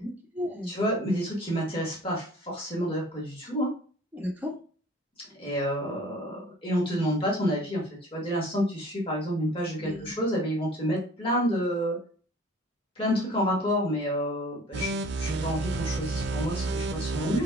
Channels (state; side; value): normal; both; correlation 0.50